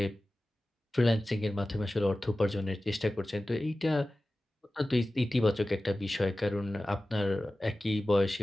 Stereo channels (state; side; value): normal; both; correlation 0.96